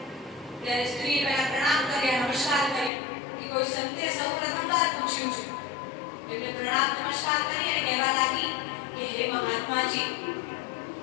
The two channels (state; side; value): drops out; right; at 2.9 s